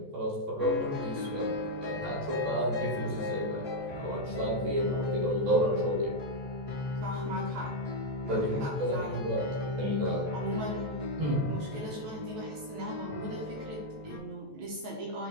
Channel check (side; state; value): left; late; 14 ms